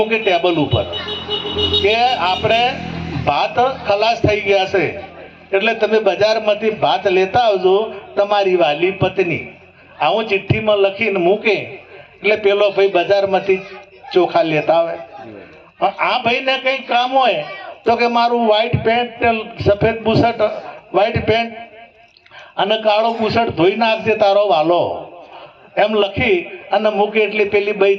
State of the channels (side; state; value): both; identical; correlation 1.00